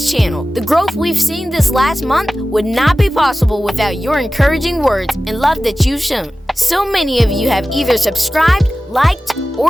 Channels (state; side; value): normal; both; correlation 0.96